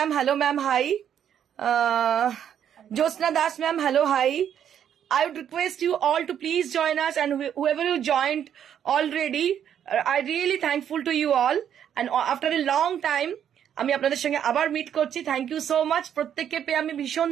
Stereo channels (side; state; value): left; quieter; 9.3 dB